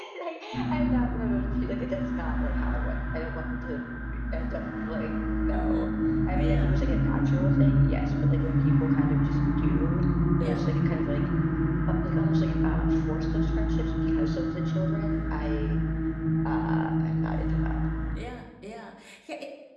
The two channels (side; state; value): both; identical; correlation 1.00